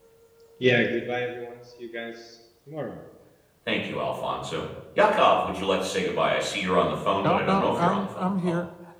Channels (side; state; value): both; identical; correlation 1.00